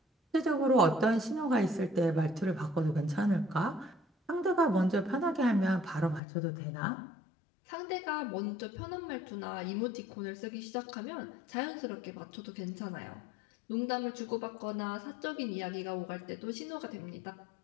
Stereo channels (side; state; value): right; drops out; at 6.2 s